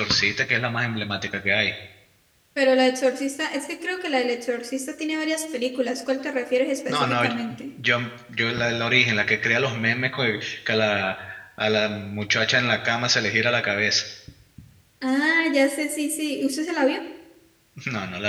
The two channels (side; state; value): both; identical; correlation 1.00